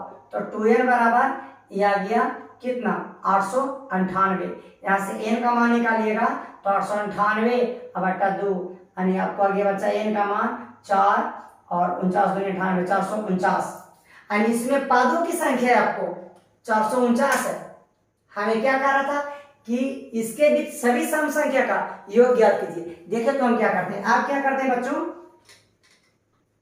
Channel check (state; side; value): identical; both; correlation 1.00